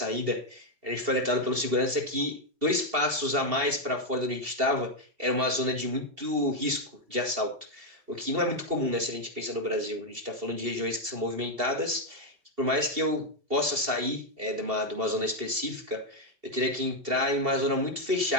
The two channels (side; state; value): left; late; 2.7 ms